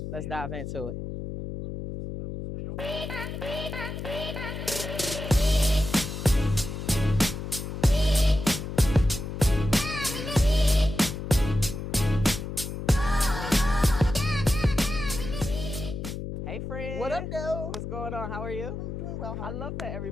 Let's dive into it. Hey, friend. What up, though? What's going on? How are you? I'm doing well. How I are love you? that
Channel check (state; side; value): noise; left; hum, 6 dB below the sound